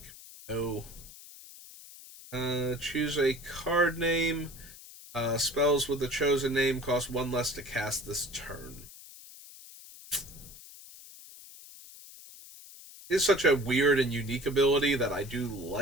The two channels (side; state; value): left; noise; hiss, 18 dB below the sound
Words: No. Choose a card name. Spells with the chosen name cost 1 less to cast this turn. It's such a weird and unique ability that I do